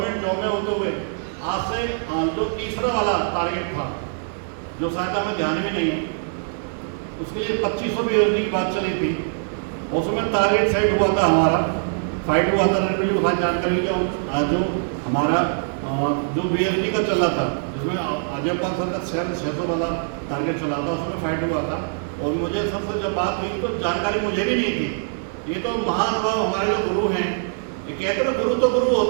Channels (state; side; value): silent; left; 63 dB below the other